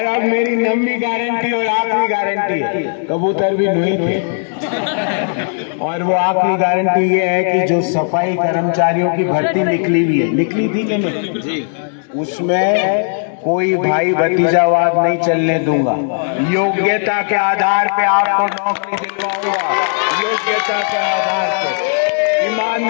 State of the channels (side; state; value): right; silent; digital silence